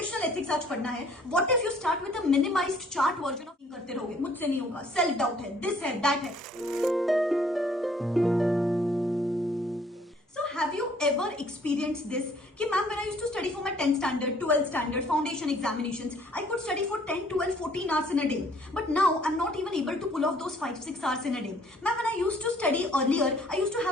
एथिक्स आज पढ़ना है, what if you start with a minimised chart version of करते रहोगे? मुझसे नहीं होगा, सेल्फ डाउट है, दिस है, दैट है। Have you ever experienced this? कि ma'am when I used to study for my 10th standard, 12th standard, foundation examinations, I could study for 10, 12, 14 hours in a day. But now I'm not even able to pull off those 5, 6 hours in a day. Ma'am, when I used to study earlier, I used to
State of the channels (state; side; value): normal; both; correlation 0.60